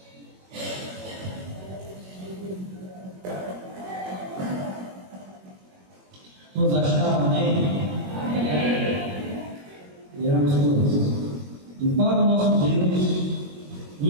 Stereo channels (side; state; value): left; late; 21 ms